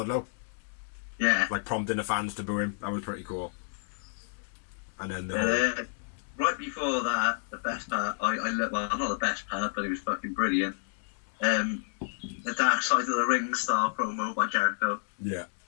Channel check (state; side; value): silent; right; digital silence